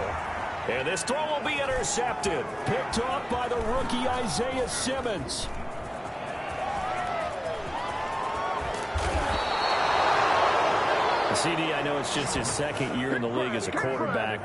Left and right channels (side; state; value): both; identical; correlation 1.00